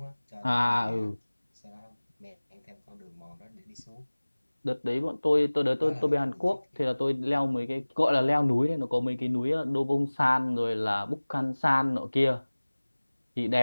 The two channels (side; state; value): both; inverted; correlation -1.00